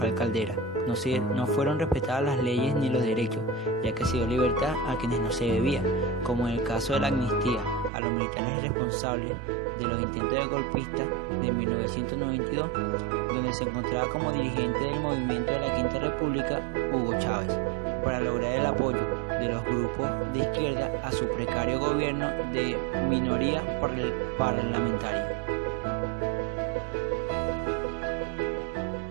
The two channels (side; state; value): left; drops out; at 7.9 s